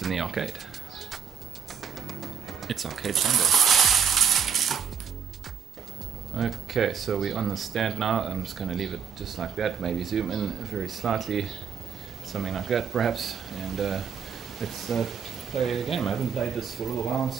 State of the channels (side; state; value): left; quieter; 7.4 dB